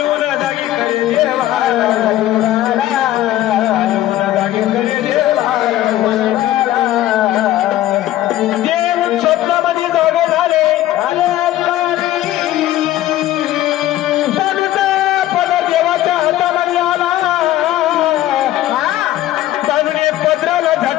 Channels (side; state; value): right; quieter; 14.0 dB